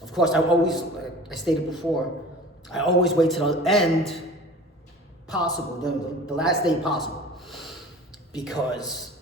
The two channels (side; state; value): both; normal; correlation 0.41